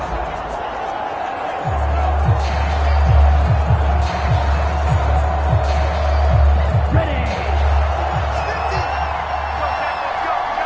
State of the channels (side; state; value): both; identical; correlation 1.00